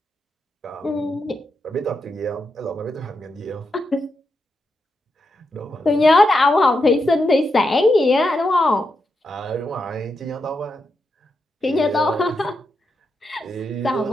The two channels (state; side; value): normal; both; correlation 0.85